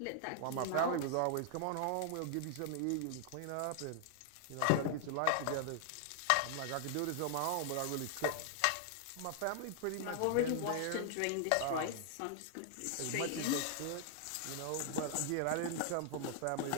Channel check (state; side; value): different; both; correlation 0.00